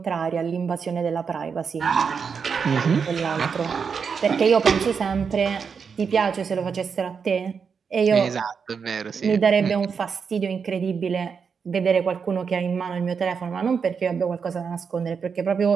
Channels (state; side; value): quieter; left; 6.1 dB